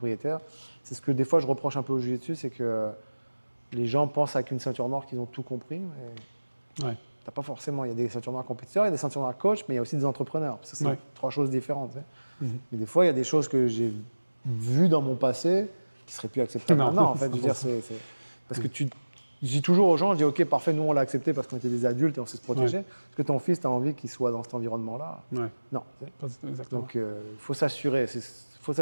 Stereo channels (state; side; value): inverted; both; correlation -1.00